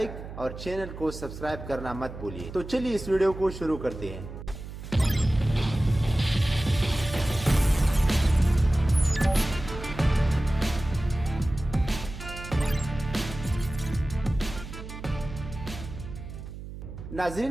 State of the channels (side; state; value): right; noise; hum, 11 dB below the sound